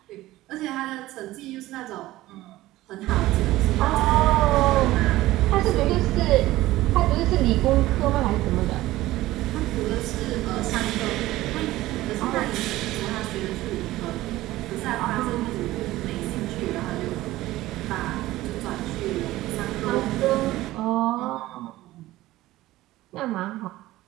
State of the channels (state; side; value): quieter; left; 16.8 dB